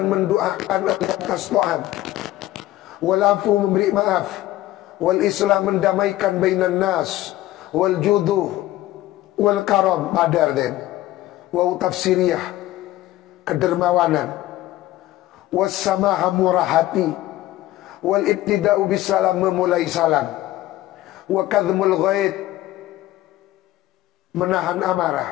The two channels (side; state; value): right; quieter; 15.6 dB